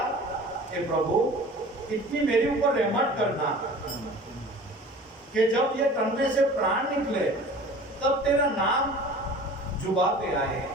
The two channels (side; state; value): both; normal; correlation 0.42